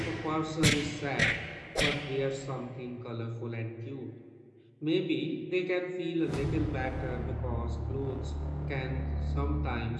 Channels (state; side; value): identical; both; correlation 1.00